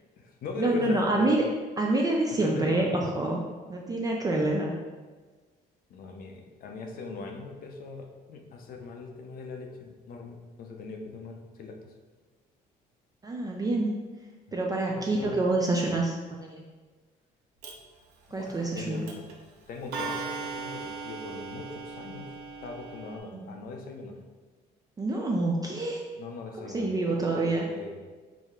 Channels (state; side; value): normal; both; correlation 0.65